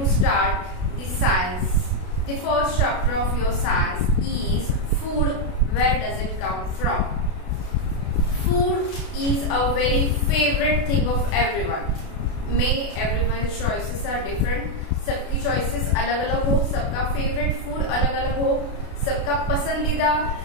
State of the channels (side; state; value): right; late; 32 ms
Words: start the science. The first chapter of your science is food. Where does it come from? Food is a very favorite thing of everyone. May everyone's choices are different. सबकी choices अलग अलग हो, सबका favorite food अलग अलग हो, सबका पसंदीदा